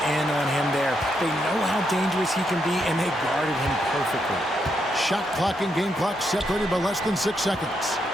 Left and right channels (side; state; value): both; normal; correlation 0.80